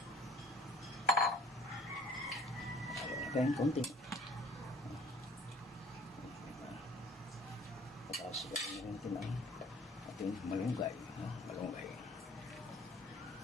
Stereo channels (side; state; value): both; normal; correlation 0.52